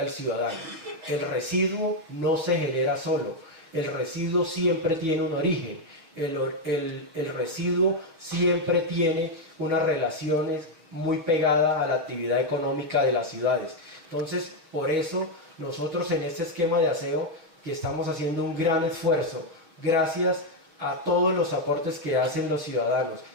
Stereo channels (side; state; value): left; late; 6.2 ms